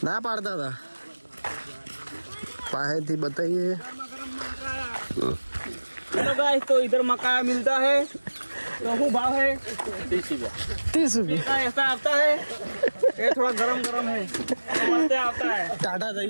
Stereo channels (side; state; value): both; inverted; correlation -1.00